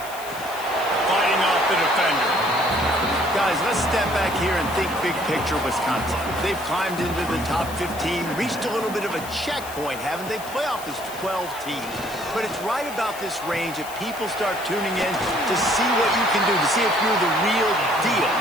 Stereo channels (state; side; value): noise; left; hiss, 14 dB below the sound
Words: Fighting off the defender. Guys, let's step back here and think big picture Wisconsin. They've climbed into the top 15, reached a little bit of a checkpoint, haven't they? Playoff is 12 teams. But it's right about this range that people start tuning in to see what you can do, to see if you're the real deal.